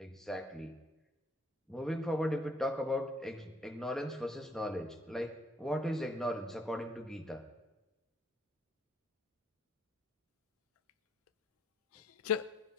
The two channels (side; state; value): both; normal; correlation 0.66